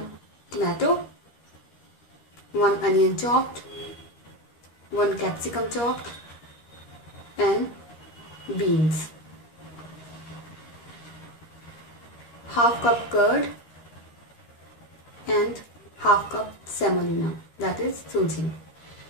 tomato, 1 onion chopped, 1 capsicum chopped and beans, half cup curd and half cup semolina, that is suji.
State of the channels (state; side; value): late; right; 13 ms